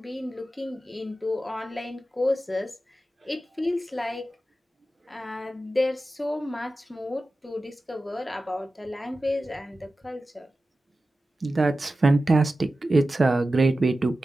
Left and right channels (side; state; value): both; normal; correlation 0.94